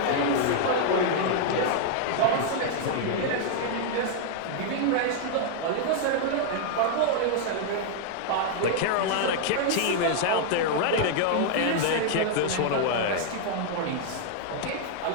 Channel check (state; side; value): different; both; correlation -0.01